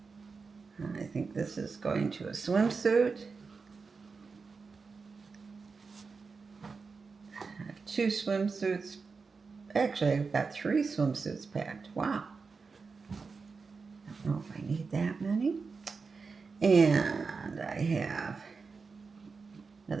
And I think this is going to a swimsuit. 2 swimsuits. Actually, I've got 3 swimsuits packed. Wow. I don't know if I need that many. And I have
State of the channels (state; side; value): quieter; left; 4.8 dB